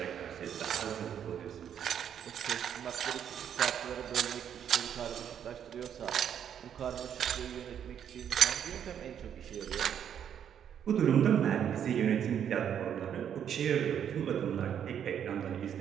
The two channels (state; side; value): quieter; left; 8.9 dB